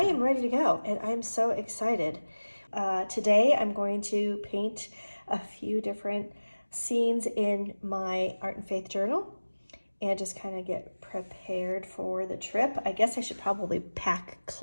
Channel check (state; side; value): inverted; both; correlation -1.00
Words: ready to go, and I'm so excited. Today I'm going to paint a few different scenes in my Art and Faith journal and just kind of get prepared for the trip. I guess I should probably pack